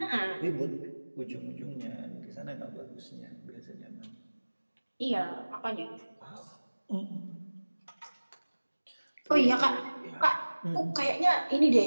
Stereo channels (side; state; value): both; inverted; correlation -1.00